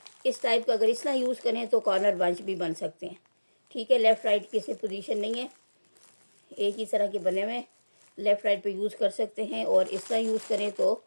इस टाइप का अगर इतना यूज़ करें तो कॉर्नर बंच भी बन सकते हैं। ठीक है, लेफ़्ट राइट की इसमें पोजीशन नहीं है, एक ही तरह के बने हुए, लेफ़्ट राइट पे यूज़ कर सकते हैं। और इस तरह यूज़ करें तो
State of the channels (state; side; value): inverted; both; correlation -1.00